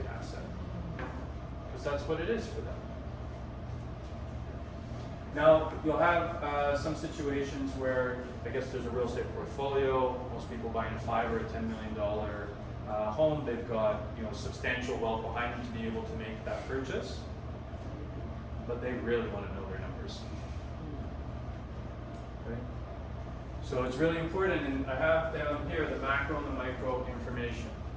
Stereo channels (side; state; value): both; identical; correlation 1.00